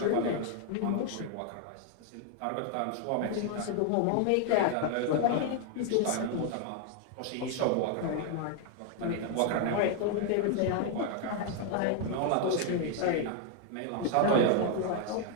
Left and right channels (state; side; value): different; both; correlation 0.00